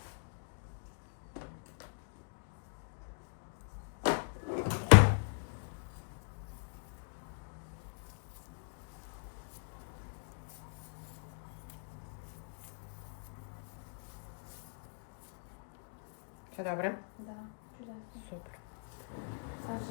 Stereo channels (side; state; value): right; silent; digital silence